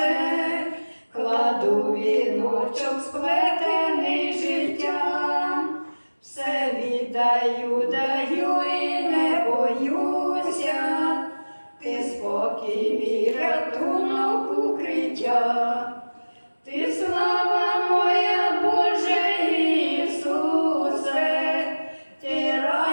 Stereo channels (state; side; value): inverted; both; correlation -1.00